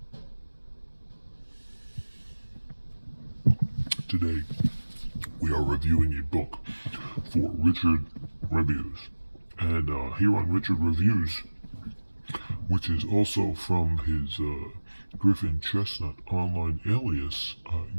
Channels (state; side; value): inverted; both; correlation -1.00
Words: Today, we are reviewing a book for Richard Reviews. And here on Richard Reviews, which is also from his Griffin Chestnut Online Alias